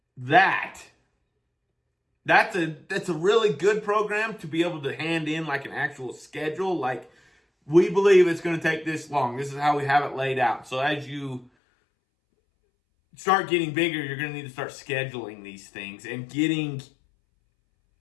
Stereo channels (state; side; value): drops out; right; at 11.5 s